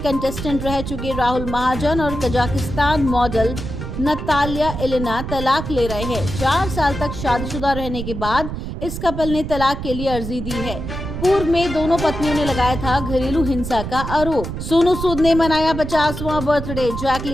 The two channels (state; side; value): noise; right; rumble, 6 dB below the sound